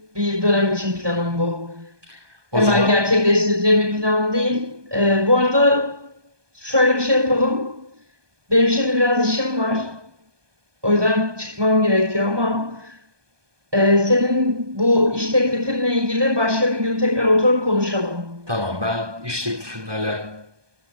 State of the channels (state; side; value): late; left; 1.2 ms